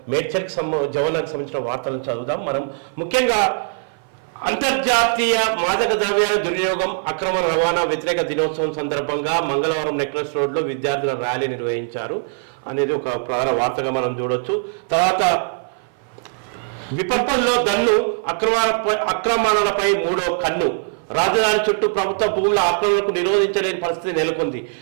మేడ్చల్కి జవనానికి సంబంధించిన వార్తలను చదువుదాం. మనం ముఖ్యంగా అంతర్జాతీయ మాదక ద్రవ్యాల దుర్వినియోగం అక్రమ రవాణా వ్యతిరేక దినోత్సవం సందర్భంగా మంగళవారం నెక్లెస్ రోడ్లో విద్యార్థుల ర్యాలీ నిర్వహించారు అనేది ఒక ప్రధాన వార్తగా మనం చూడొచ్చు. తర్వాత విపత్తుల్లో దన్ను అక్రమణలపై మూడో కన్ను. రాజధాని చుట్టూ ప్రభుత్వ భూముల ఆక్రమణకు నిరోధించలేని పరిస్థితి నెలకొంది.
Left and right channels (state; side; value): silent; left; 57 dB below the other